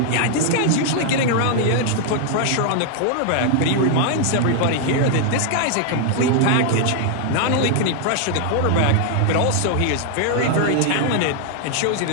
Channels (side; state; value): both; different; correlation 0.00